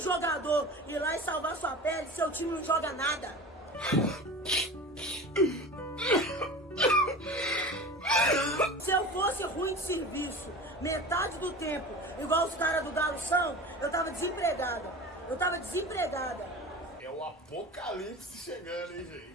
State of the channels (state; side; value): normal; both; correlation 0.34